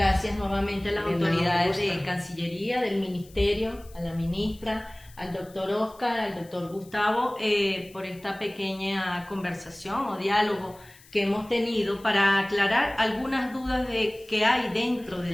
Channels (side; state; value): left; noise; hiss, 25 dB below the sound